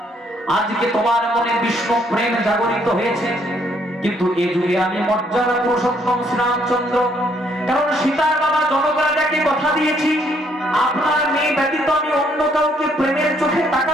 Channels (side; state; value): both; normal; correlation 0.69